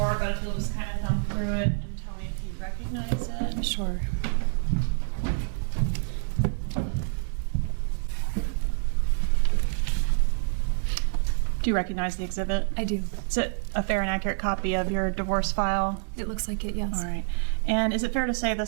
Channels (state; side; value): silent; left; digital silence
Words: but we'll just kind of come through it and tell me if you recognize it. Sure. Do you recognize the exhibit? I do. Is it a fair and accurate copy of your divorce file? It looks like it, yes. All right. And is it fair to say